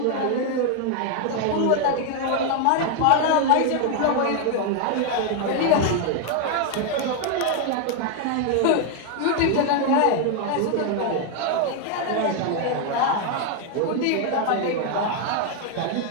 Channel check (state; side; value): different; both; correlation 0.01